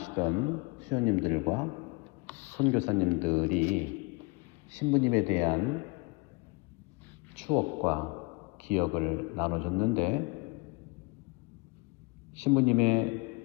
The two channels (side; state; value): right; quieter; 28.3 dB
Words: 수녀님들과 선교사님들이 신부님에 대한 추억과 기억을 나눠줬는데,